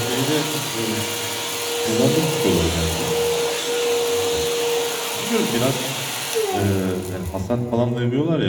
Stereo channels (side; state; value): both; identical; correlation 1.00